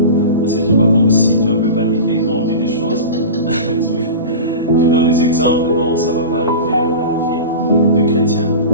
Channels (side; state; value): both; inverted; correlation -0.31